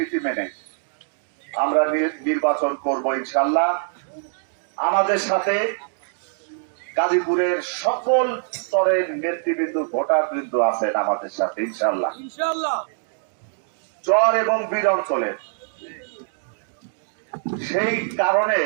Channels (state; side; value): silent; left; digital silence